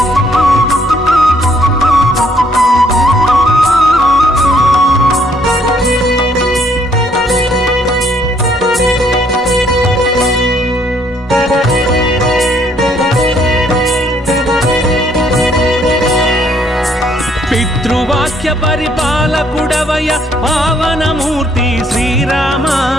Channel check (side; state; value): both; normal; correlation 0.67